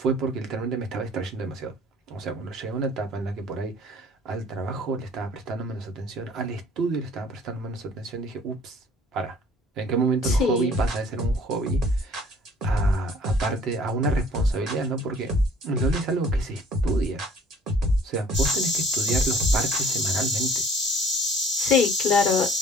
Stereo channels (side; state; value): both; normal; correlation 0.53